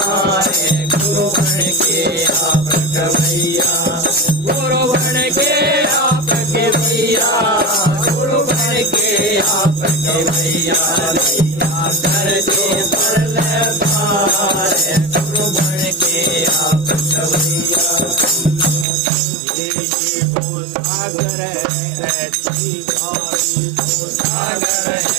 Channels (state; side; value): drops out; left; at 18.9 s